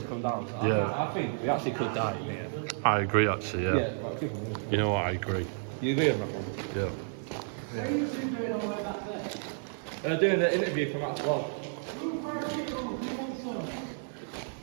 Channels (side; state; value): left; silent; digital silence